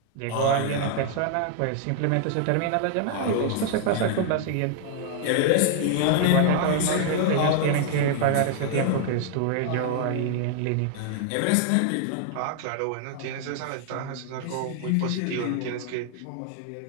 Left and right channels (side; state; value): both; different; correlation 0.00